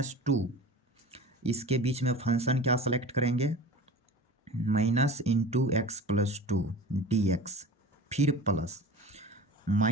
इसके बीच में फंक्शन क्या सेलेक्ट करेंगे? -(x+2) dx, फिर प्लस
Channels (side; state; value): both; normal; correlation 0.37